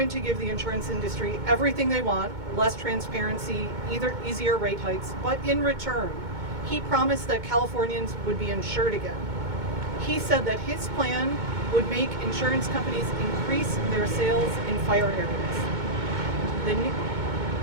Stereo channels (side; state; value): left; late; 2.2 ms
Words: to give the insurance industry everything they want, less transparency, easier rate hikes, but in return, he promised that Californians would be insured again. He said that his plan would make insurance companies increase their sales in fire areas. Then,